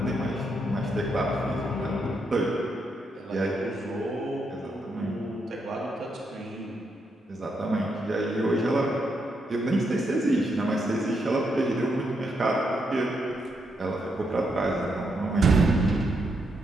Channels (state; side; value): normal; both; correlation 0.80